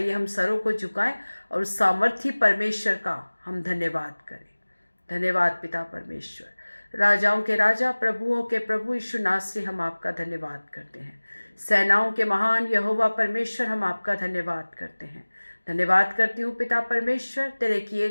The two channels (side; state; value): both; inverted; correlation -1.00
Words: हम सरों को झुकाएं और उस सामर्थी परमेश्वर का हम धन्यवाद करें। धन्यवाद पिता परमेश्वर। राजाओं के राजा, प्रभुओं के प्रभु यीशु नासरी से हम आपका धन्यवाद करते हैं। सेनाओं के महान यहोवा परमेश्वर, हम आपका धन्यवाद करते हैं। धन्यवाद करती हूँ पिता परमेश्वर, तेरे किए